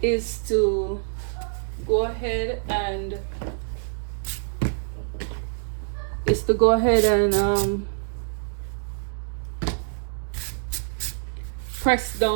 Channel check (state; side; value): silent; left; digital silence